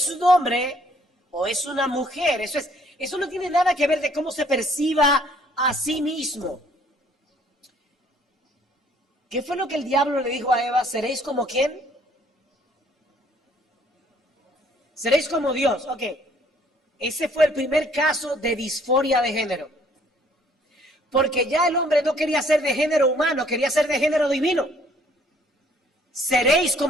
un hombre o es una mujer. Eso no tiene nada que ver de cómo se perciba a sí mismo. ¿Qué fue lo que el diablo le dijo a Eva? ¿Seréis como quién? Seréis como Dios. Ok. Ese fue el primer caso de disforia de género. Porque ya el hombre no quería ser de género humano, quería ser de género divino. Seréis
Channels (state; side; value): normal; both; correlation 0.61